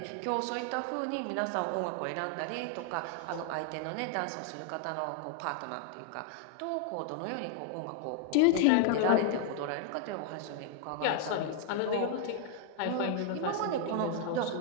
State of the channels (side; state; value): both; different; correlation 0.00